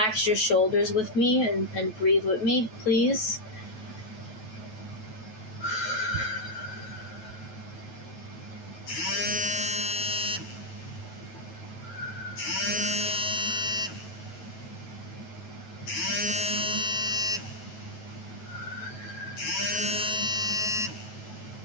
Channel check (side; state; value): right; late; 9.3 ms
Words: your shoulders with me and breathe with me, please.